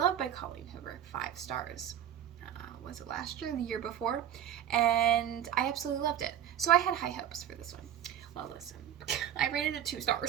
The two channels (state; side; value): quieter; left; 10.4 dB